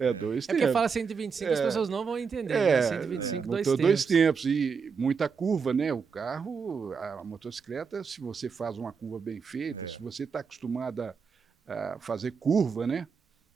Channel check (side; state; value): left; quieter; 5.7 dB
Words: tempos. É porque fala 125, as pessoas não vão entender. Né? 125, dois tempos. E muita curva, né? O carro, a motocicleta, se você faz uma curva bem feita, se você está acostumado a fazer curva, né?